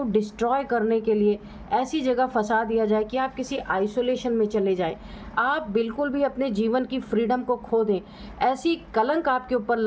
डिस्ट्रॉय करने के लिए ऐसी जगह फंसा दिया जाए कि आप किसी आइसोलेशन में चले जाएं, आप बिल्कुल भी अपने जीवन की फ्रीडम को खो दें। ऐसी कलंक आपके ऊपर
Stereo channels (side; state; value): both; identical; correlation 1.00